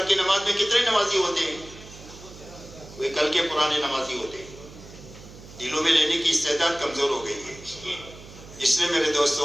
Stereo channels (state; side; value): noise; right; hum, 18 dB below the sound